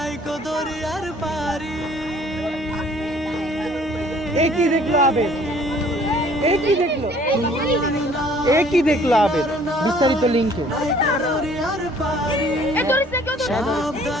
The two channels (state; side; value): normal; both; correlation 0.56